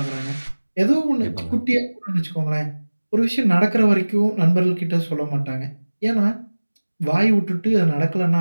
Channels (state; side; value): inverted; both; correlation -1.00